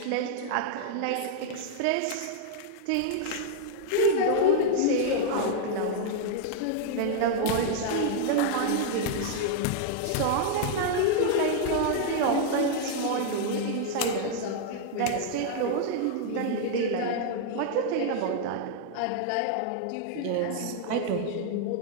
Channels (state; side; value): different; both; correlation -0.01